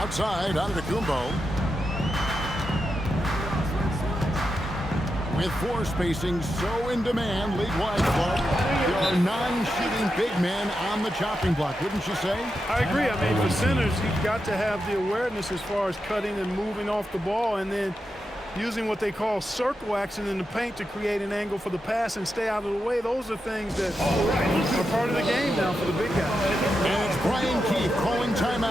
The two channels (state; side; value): normal; both; correlation 0.87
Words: Antetokounmpo. With 4 spacing so in demand, league-wide, Clark, there are 9 shooting big men on the chopping block, wouldn't you say? I agree. I mean, for centers, you've got to have the awareness as far as cutting and moving off the ball, and then using what they call circle action in the paint to create an angle for the pass and stay out of the way. Those are things that are part of the game now for the big guys. And it's Brian Keefe calling